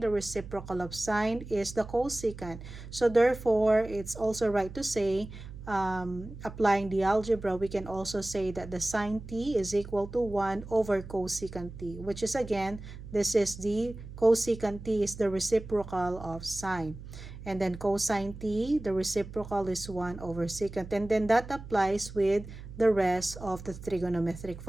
the reciprocal of sine is the cosecant. So therefore, it's also right to say, applying the algebra, we can also say that the sine t is equal to 1 over cosecant t, which is again, this is the cosecant t is the reciprocal of sine. And then cosine t, the reciprocal is 1 over secant. And then that applies with the rest of the trigonometric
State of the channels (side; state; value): right; noise; hum, 13 dB below the sound